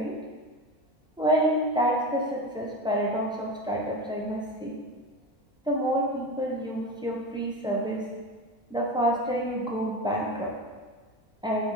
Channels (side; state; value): both; normal; correlation 0.24